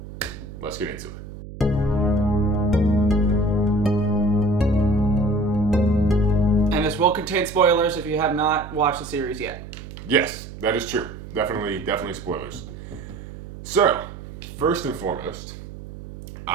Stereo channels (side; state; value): right; noise; hum, 13 dB below the sound